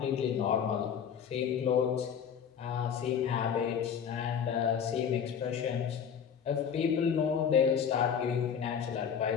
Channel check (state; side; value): quieter; right; 7.7 dB